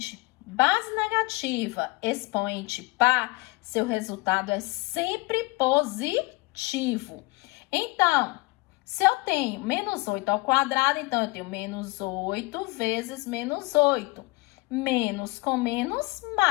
base negativa, expoente par, seu resultado é sempre positivo. Então, se eu tenho menos 8 ao quadrado, então eu tenho menos 8 vezes menos 8. Menos com menos,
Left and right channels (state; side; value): quieter; right; 24.8 dB